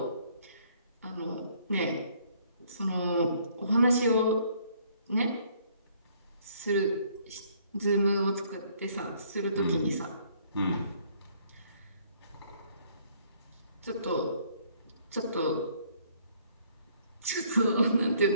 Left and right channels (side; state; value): both; inverted; correlation -0.63